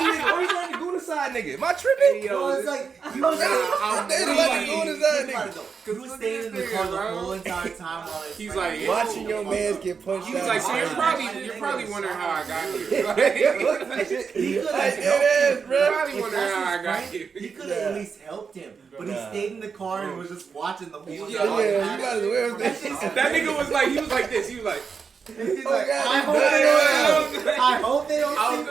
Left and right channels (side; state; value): left; quieter; 5.8 dB